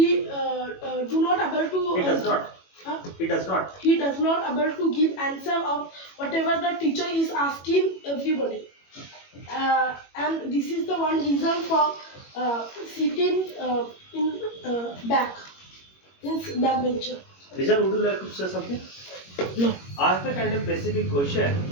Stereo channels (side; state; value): right; late; 21 ms